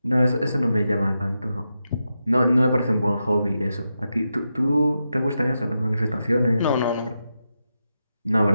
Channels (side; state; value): both; inverted; correlation -0.87